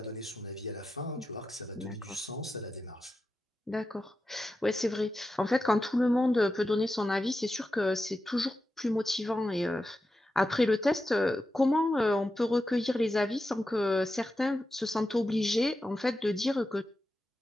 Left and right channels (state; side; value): normal; both; correlation 0.90